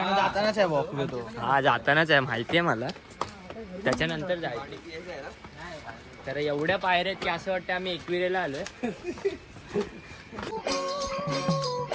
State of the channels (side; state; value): both; identical; correlation 1.00